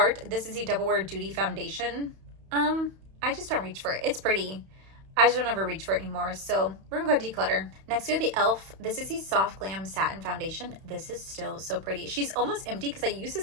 This is the Double Wear Duty Foundation. I just don't reach for it. It's pretty. I just don't ever reach for it anymore, so we're gonna go declutter. Next, we have the e.l.f. This is the Soft Glam Satin Foundation. This is still so pretty. She's almost empty because I use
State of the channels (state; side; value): late; left; 31 ms